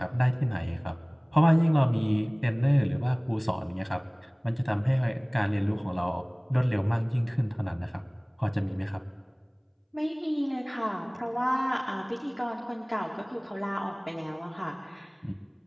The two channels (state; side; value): identical; both; correlation 1.00